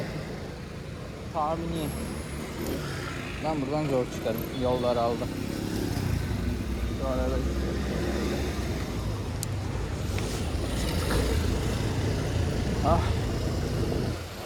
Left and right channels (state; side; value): identical; both; correlation 1.00